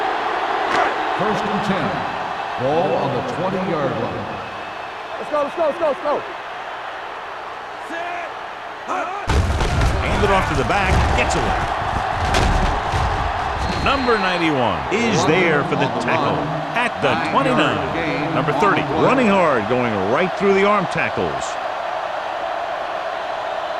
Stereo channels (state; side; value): identical; both; correlation 1.00